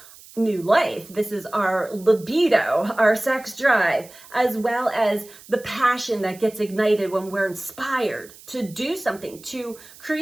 new life. This is our libido, our sex drive, as well as the passion that gets ignited when we're inspired to do something, to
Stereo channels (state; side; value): noise; right; hiss, 21 dB below the sound